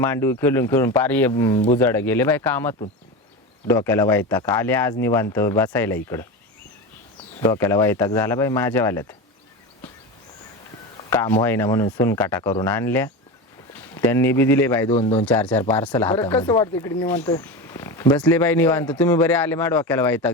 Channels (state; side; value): normal; both; correlation 0.23